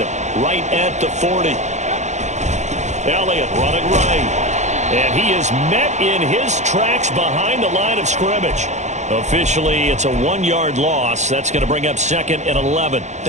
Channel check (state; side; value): late; left; 0.34 ms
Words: right at the 40. Elliott running right. And he is met in his tracks behind the line of scrimmage. Officially, it's a 1-yard loss. That's going to bring up 2nd and 11. I